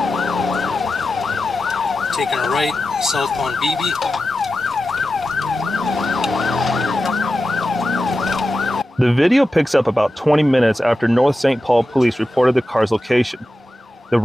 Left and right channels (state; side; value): normal; both; correlation 0.92